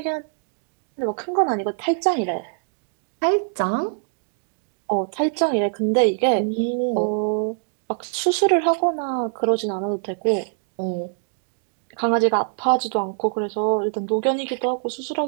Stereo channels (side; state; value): left; silent; digital silence